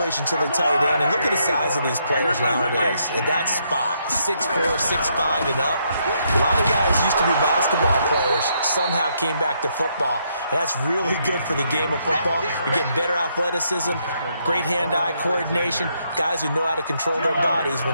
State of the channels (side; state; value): both; inverted; correlation -0.75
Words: to the tight end. And look at the size of these players nowadays. At that spot, 6'4", 6'5", and up. A lot of guys used to be basketball players, somehow came back to football. And that's really good for the game of football. You're getting better athleticism, great hand-eye coordination, guys who know how to control their bodies